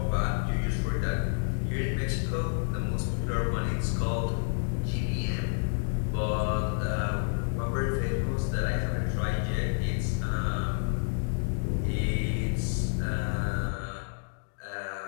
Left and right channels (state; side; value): silent; right; digital silence